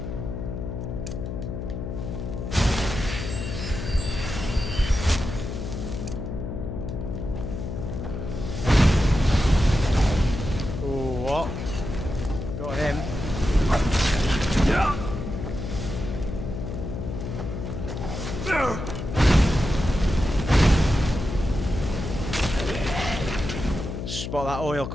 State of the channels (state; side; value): noise; left; hum, 5 dB below the sound